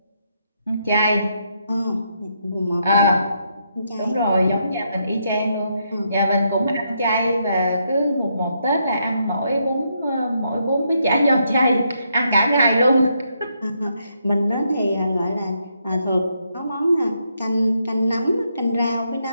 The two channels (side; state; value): both; inverted; correlation -0.77